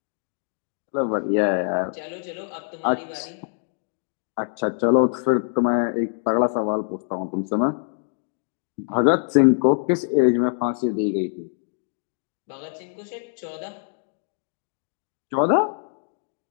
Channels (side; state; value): right; silent; digital silence